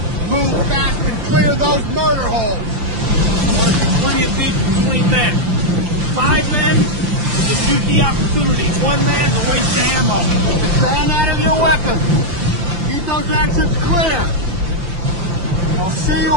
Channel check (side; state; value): left; late; 5.8 ms